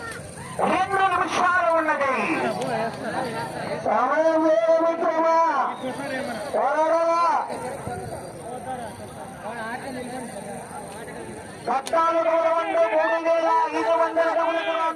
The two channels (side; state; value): both; identical; correlation 1.00